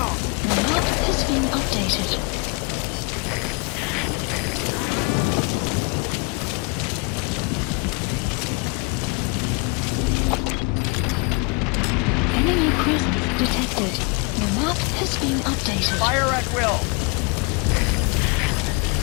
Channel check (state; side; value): quieter; right; 30.3 dB